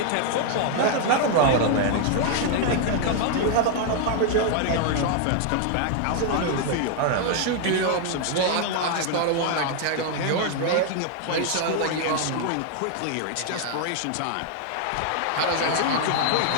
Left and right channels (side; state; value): both; different; correlation 0.00